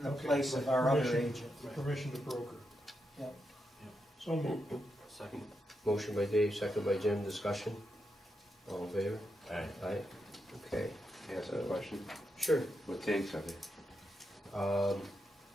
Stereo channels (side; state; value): both; normal; correlation 0.84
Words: the Okay, place of our other agent. Permission to broker. Yep. So moved. Second. motion by Dave, second by Jim, discussion. All in favor? Aye. Aye. Okay, Ask a question. sure. What tanks are they?